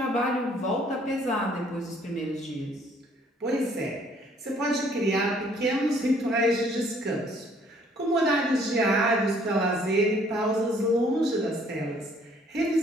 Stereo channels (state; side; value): normal; both; correlation 0.61